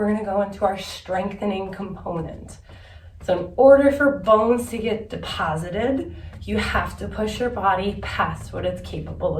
gonna go into our strengthening component. So in order for bones to get deposited, you have to push your body past what it's capable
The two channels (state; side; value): identical; both; correlation 1.00